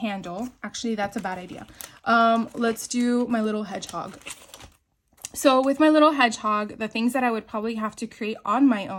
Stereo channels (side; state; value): both; identical; correlation 1.00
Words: Actually, that's a bad idea. Let's do my little hedgehog. So with my little hedgehog, the things that I would probably have to create on my